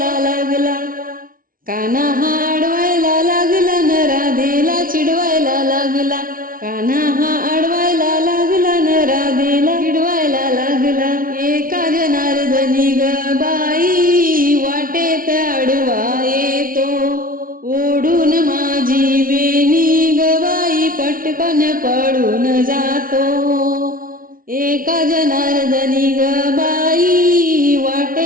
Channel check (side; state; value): left; late; 0.41 ms